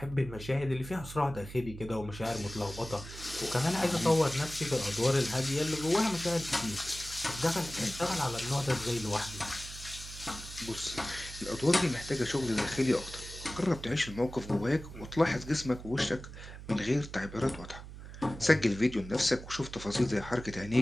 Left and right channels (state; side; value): noise; right; hum, 13 dB below the sound